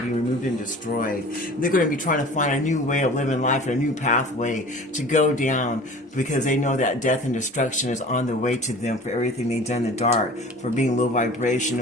be removed and destroyed. They're going to be trying to find a new way of living life and a new pathway to go down, because they know that death and destruction is on the way to them for everything they've done in the dark, for being low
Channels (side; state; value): both; normal; correlation 0.42